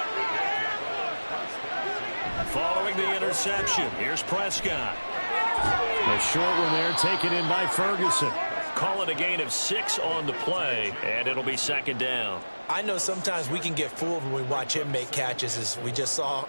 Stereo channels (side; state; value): both; inverted; correlation -1.00